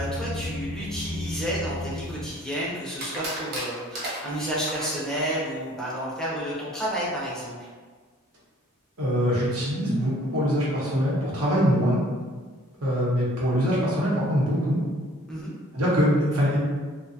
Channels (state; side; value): normal; both; correlation 0.57